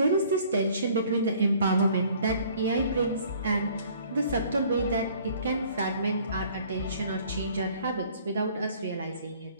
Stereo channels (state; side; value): inverted; both; correlation -0.56